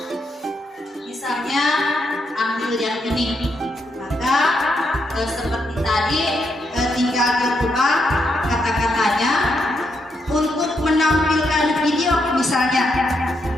Misalnya ambil yang ini, maka seperti tadi tinggal dirubah kata-katanya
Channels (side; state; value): both; normal; correlation 0.80